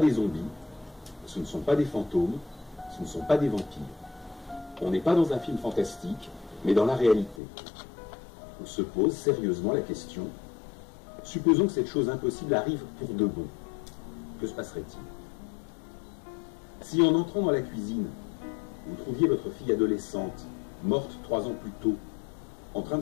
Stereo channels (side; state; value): right; drops out; at 7.4 s